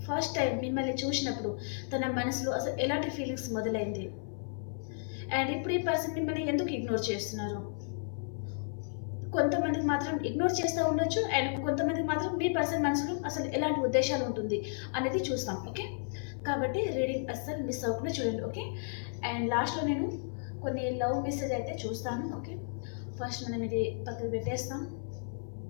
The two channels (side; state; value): right; silent; 56 dB below the other